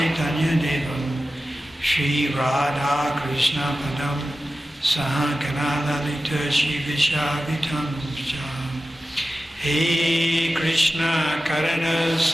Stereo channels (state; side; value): normal; both; correlation 0.94